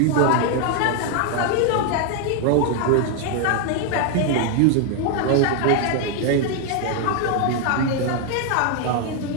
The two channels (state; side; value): different; both; correlation 0.00